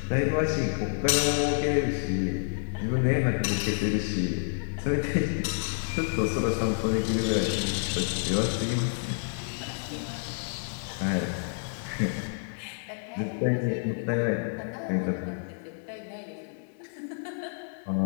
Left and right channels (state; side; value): silent; right; digital silence